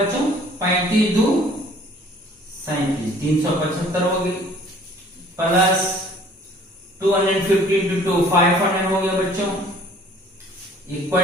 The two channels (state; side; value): normal; both; correlation 0.54